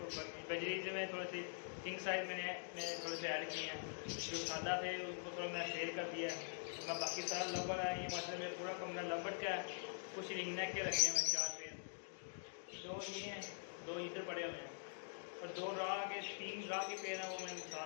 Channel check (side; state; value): right; silent; digital silence